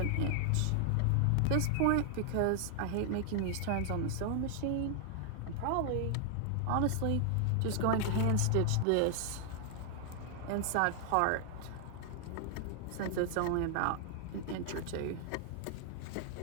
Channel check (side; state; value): both; different; correlation 0.00